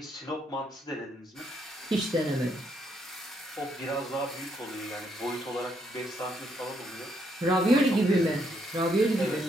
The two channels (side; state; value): both; normal; correlation 0.74